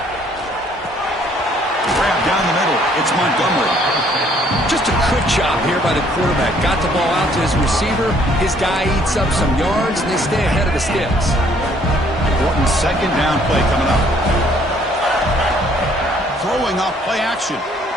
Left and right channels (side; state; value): both; normal; correlation 0.63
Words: Grab down the middle. It's Montgomery. Just a good job here by the quarterback. Got the ball out to his receiver. His guy eats up some yards, and they stay ahead of the sticks. Important 2nd down play coming up. Throwing off play action.